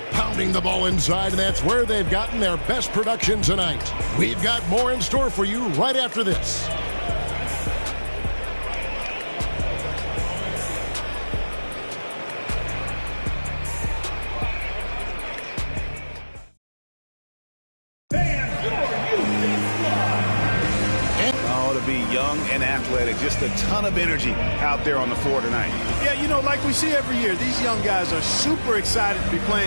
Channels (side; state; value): both; inverted; correlation -1.00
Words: pounding the ball inside, and that's where they've gotten their best production tonight. We've got more in store for you right after this. And athletic, just a ton of energy out there on the floor tonight. Yeah, you know, like we see every year, these young guys are super excited to be